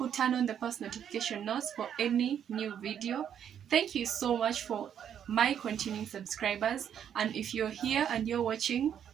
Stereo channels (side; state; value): left; quieter; 9.0 dB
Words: turn on the post notification notes for any new video. Thank you so much for my continuing subscribers. And if you're here and you're watching